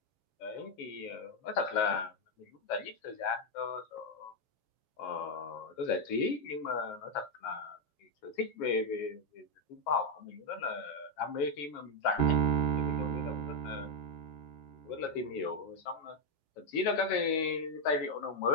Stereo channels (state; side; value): late; right; 7.3 ms